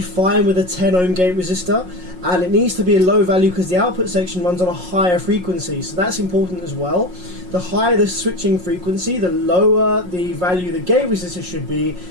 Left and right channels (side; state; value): left; late; 5.5 ms